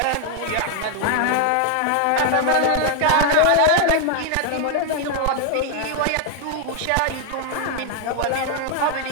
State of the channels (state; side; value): different; both; correlation 0.00